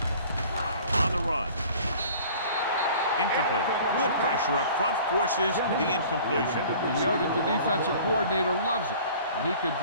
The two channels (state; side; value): inverted; both; correlation -0.47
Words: On the run. Incomplete. Good pressure up front forces the incompletion. You know that the defensive coordinator loves it, and he can